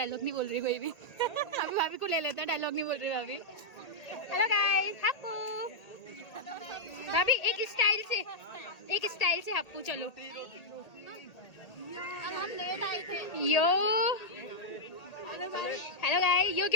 नहीं बोल रही कोई भी। अभी भाभी को ले लेते हैं, डायलॉग नहीं बोल रही भाभी। Hello guys, Happu. भाभी एक स्टाइल से हप्पू। चलो हम लेट आए थे। यो हेलो गाइस, यो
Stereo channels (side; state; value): right; late; 1.8 ms